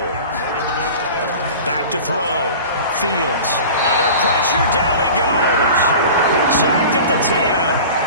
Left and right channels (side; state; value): both; inverted; correlation -0.38